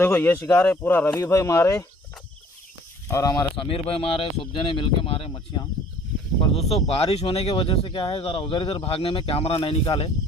ये शिकार है पूरा रवि भाई मारे और हमारे समीर भाई मारे, सब जने मिलके मारे मच्छियाँ। पर दोस्तों बारिश होने की वजह से क्या है ज़रा उधर इधर भागने में कैमरा नहीं निकाले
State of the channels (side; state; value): both; normal; correlation 0.54